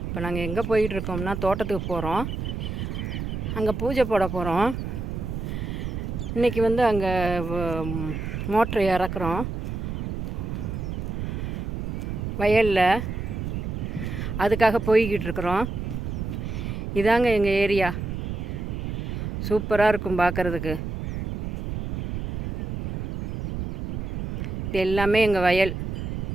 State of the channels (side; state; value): right; noise; rumble, 4 dB below the sound